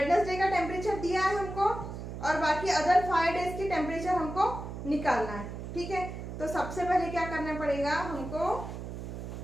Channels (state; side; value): noise; right; hum, 8 dB below the sound